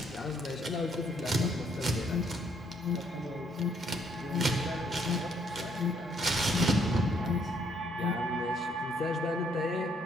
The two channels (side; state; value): both; normal; correlation 0.69